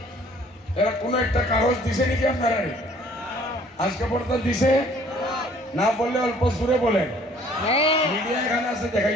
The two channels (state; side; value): normal; both; correlation 0.56